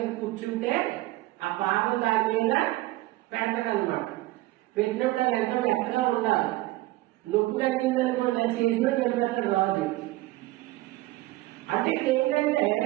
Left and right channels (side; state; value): left; quieter; 18.4 dB